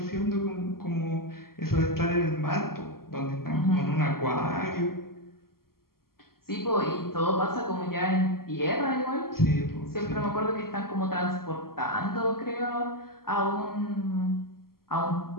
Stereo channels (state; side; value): late; right; 0.93 ms